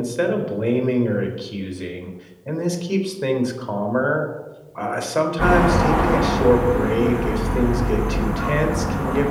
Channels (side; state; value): both; identical; correlation 1.00